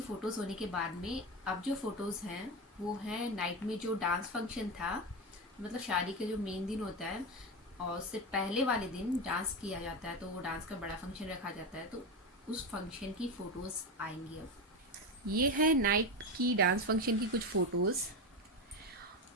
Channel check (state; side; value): normal; both; correlation 0.16